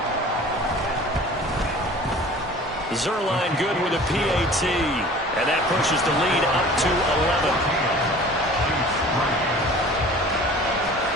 Zerline good with a PAT, and that pushes the lead up to 11.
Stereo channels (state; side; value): normal; both; correlation 0.45